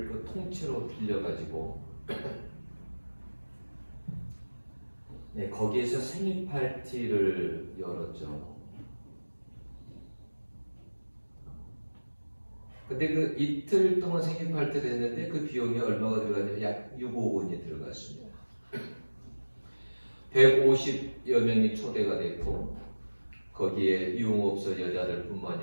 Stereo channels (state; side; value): inverted; both; correlation -1.00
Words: 그 통째로 빌려가지고 네, 거기에서 생일 파티를 열었죠. 근데 그 이틀 동안 생일 파티를 했는데 그 비용이 얼마가 들어갔냐면 약 6억 원이 들어갔습니다. 150여 명이 초대가 됐고 거기에 유흥업소 여자들